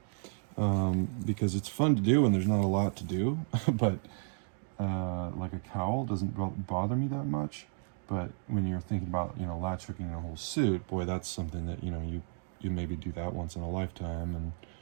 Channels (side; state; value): left; silent; 56 dB below the other